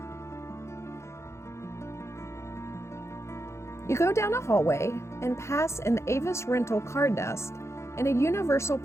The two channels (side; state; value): right; late; 0.13 ms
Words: You go down a hallway and pass an Avis rental car desk and a Universal